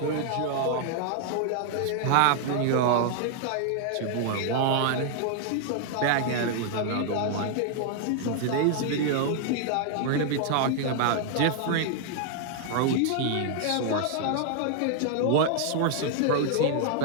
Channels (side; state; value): both; different; correlation 0.00